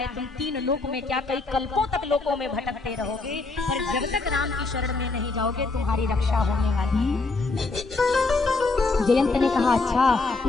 तुम 3 लोक में क्या कई कल्पों तक लोकों में भटकते रहोगे, पर जब तक राम की शरण में नहीं जाओगे तुम्हारी रक्षा होने वाली। जयंत ने कहा अच्छा,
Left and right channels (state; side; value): quieter; right; 3.7 dB